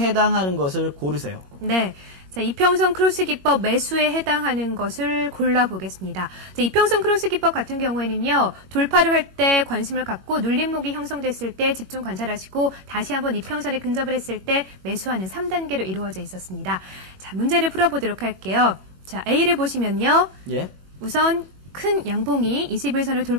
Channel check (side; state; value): left; late; 21 ms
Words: 것을 고르세요. 네. 자, 이평선 크로스 기법 매수에 해당하는 것을 골라보겠습니다. 자, 이평선 크로스 기법 같은 경우에는요, 돌파를 할 때 관심을 갖고 눌림목이 형성됐을 때 집중 관찰하시고 다시 한번 이평선에 근접을 했을 때 매수하는 3단계로 이루어져 있었습니다. 자, 문제를 풀어보도록 할게요. 자, A를 보시면요. 예. 우선 큰 양봉이 21선을